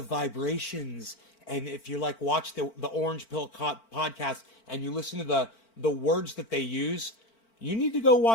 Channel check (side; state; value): right; late; 4.4 ms